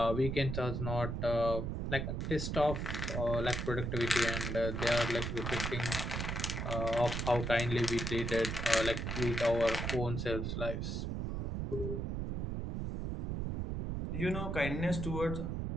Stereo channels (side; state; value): right; noise; rumble, 2 dB below the sound